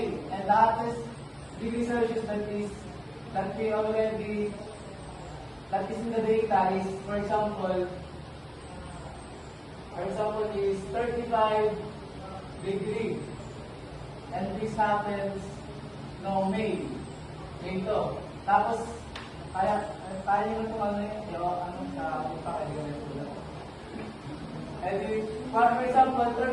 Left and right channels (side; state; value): both; identical; correlation 1.00